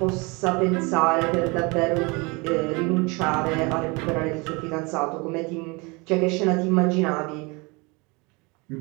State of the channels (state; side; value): quieter; left; 27.5 dB